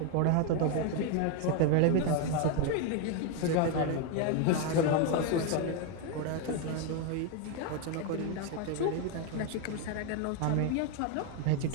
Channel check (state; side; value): different; both; correlation 0.01